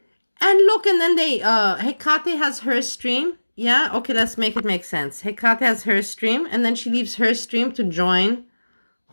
And look, and then Hekate has her stream. Yeah, okay, let's make it make sense. Hekate has her stream, and then she leaves her stream to join,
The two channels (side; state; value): both; inverted; correlation -1.00